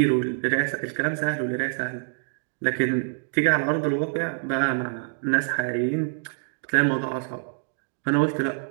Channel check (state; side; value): silent; left; digital silence